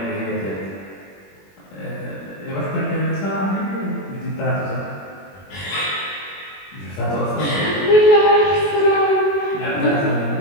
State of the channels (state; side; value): late; right; 21 ms